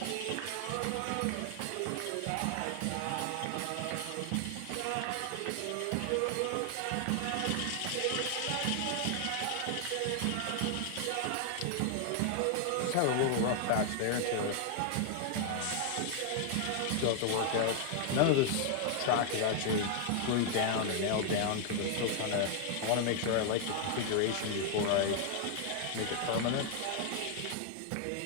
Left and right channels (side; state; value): both; different; correlation 0.00